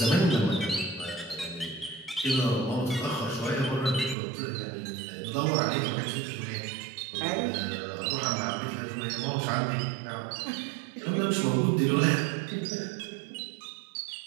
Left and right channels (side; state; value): left; drops out; at 4.2 s